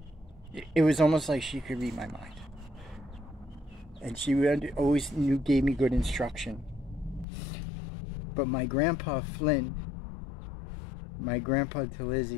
it was almost like she could read my mind. And she always gave me good instruction. But my grandpa Flynn, my grandpa to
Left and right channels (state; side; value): drops out; right; at 7.2 s